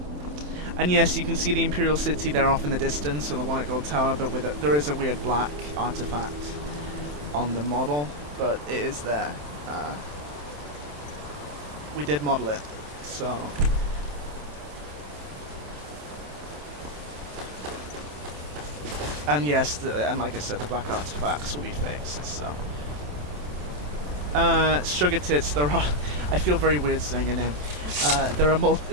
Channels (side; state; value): left; late; 27 ms